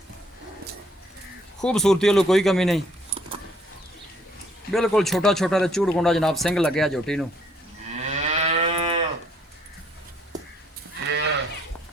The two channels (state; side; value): normal; both; correlation 0.65